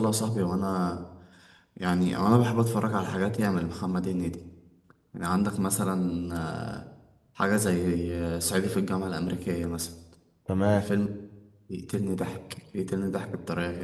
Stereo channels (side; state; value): both; identical; correlation 1.00